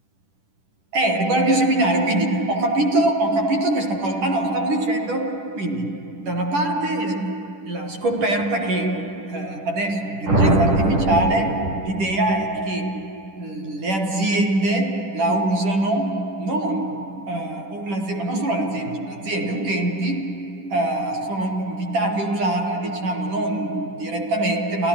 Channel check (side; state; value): left; late; 10 ms